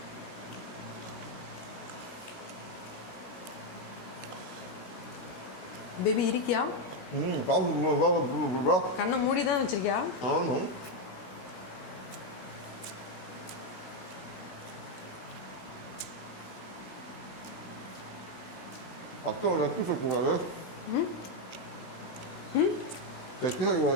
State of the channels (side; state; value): right; late; 16 ms